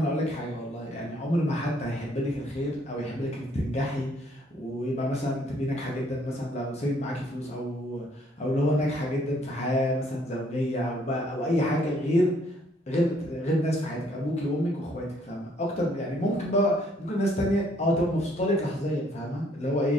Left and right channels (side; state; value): both; normal; correlation 0.65